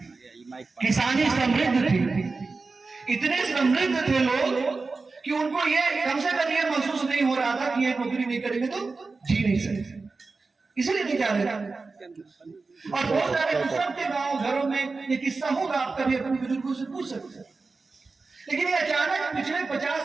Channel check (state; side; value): quieter; left; 4.0 dB